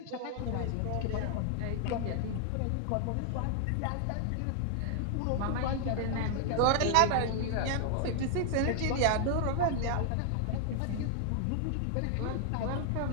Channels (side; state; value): both; different; correlation 0.00